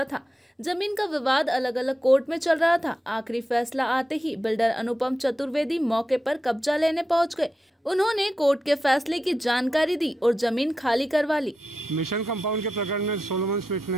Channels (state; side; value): normal; both; correlation 0.89